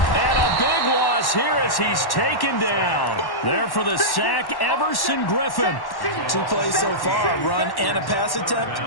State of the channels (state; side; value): late; right; 1.1 ms